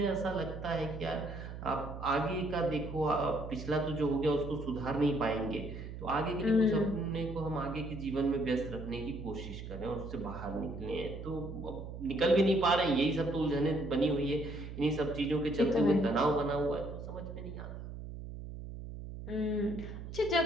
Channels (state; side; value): noise; right; hum, 9 dB below the sound